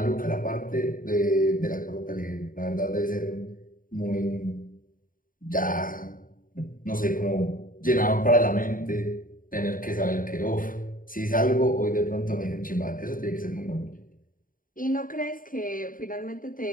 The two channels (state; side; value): late; right; 0.40 ms